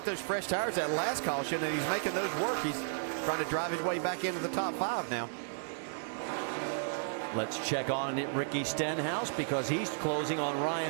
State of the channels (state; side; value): silent; left; digital silence